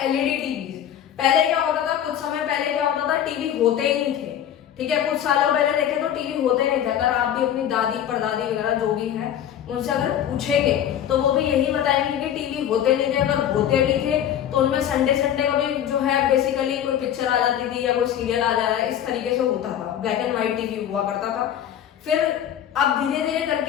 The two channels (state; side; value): quieter; right; 10.2 dB